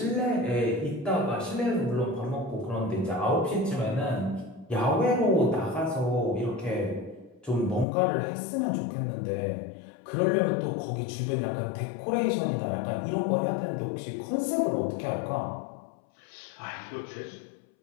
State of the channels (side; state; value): right; drops out; at 7.9 s